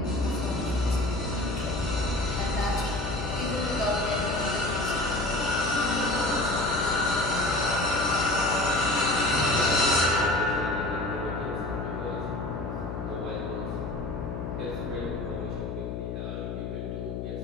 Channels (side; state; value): left; noise; hum, 5 dB below the sound